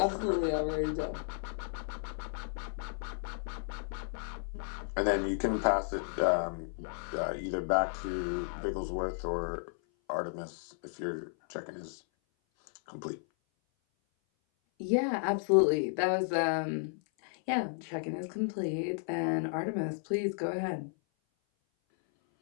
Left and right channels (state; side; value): silent; right; 55 dB below the other